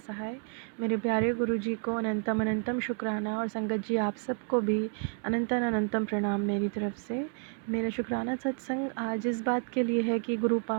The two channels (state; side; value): quieter; left; 38.6 dB